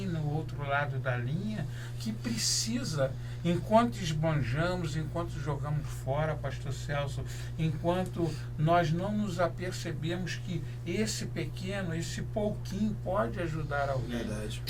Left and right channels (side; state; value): both; identical; correlation 1.00